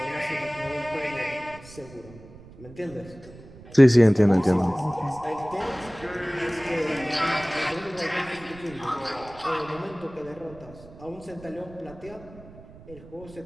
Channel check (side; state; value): right; noise; rumble, 19 dB below the sound